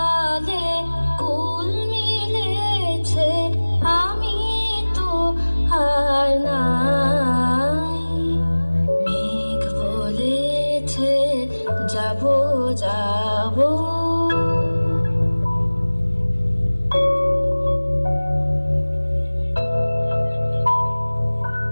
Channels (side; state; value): both; inverted; correlation -1.00